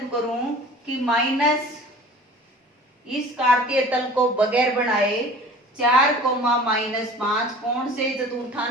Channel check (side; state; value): both; normal; correlation 0.44